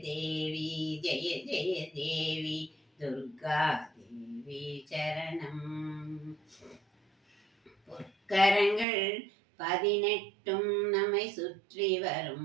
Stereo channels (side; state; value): left; drops out; at 8.8 s